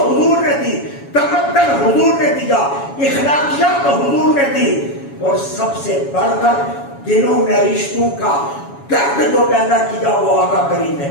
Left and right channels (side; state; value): right; late; 7.2 ms